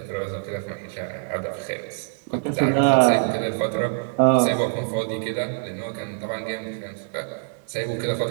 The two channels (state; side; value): silent; left; digital silence